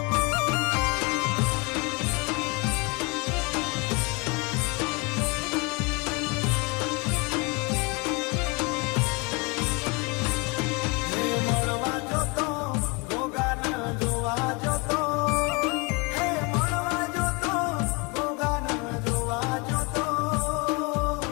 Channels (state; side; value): quieter; right; 28.7 dB